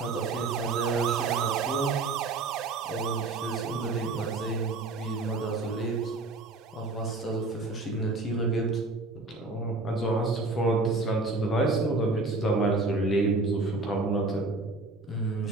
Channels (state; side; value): quieter; left; 3.4 dB